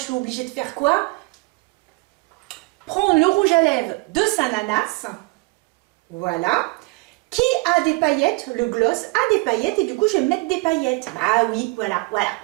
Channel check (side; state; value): left; quieter; 26.0 dB